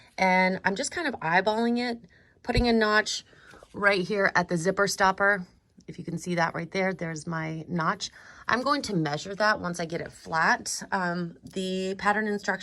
And I'm just kind of eyeballing it, putting a notch right here at the zipper stopper. If you can see that right there, there's my notch. I'm going to measure that once I get it flat. The pattern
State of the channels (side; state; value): both; identical; correlation 1.00